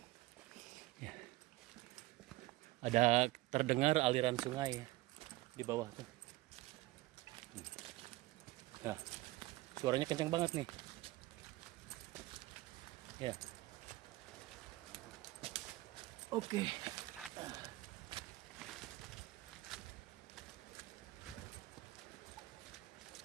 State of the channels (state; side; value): quieter; left; 18.9 dB